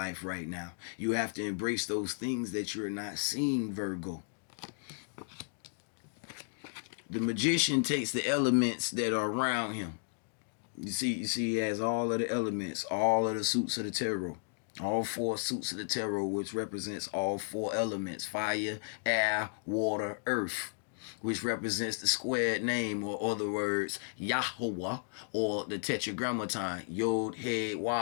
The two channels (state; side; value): silent; right; digital silence